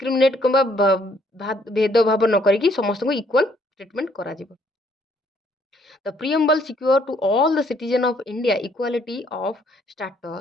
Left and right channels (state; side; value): normal; both; correlation 0.66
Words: कि भेदभाव न करी समस्त को इक्वल ट्रीटमेंट करा जिवो. The preamble secure to all the citizen of India equality of